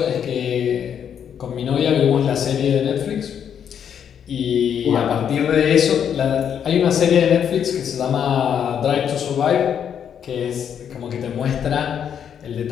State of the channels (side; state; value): right; quieter; 8.4 dB